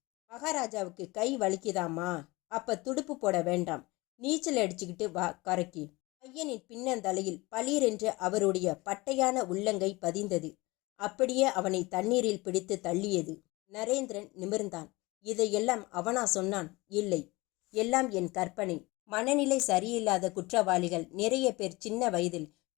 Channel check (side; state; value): right; quieter; 22.7 dB